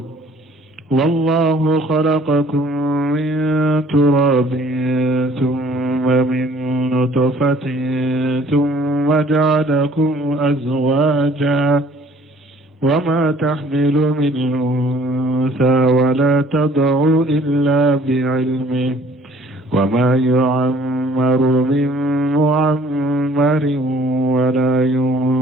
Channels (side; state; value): both; normal; correlation 0.56